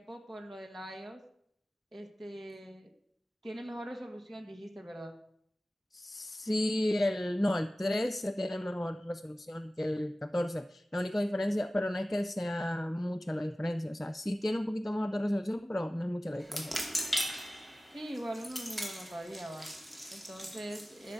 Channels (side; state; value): both; normal; correlation 0.97